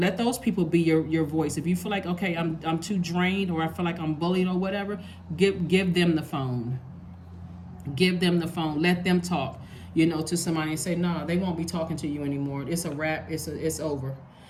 those people be your voice. If you feel like, okay, I'm too drained, or I feel like I'm bullied or whatever, give them the phone. Give them the phone. Let them talk, to somebody and say, no, they won't be talking to you anymore. It's a wrap. It's over.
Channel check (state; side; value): identical; both; correlation 1.00